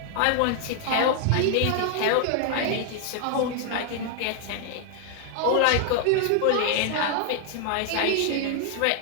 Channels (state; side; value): different; both; correlation 0.00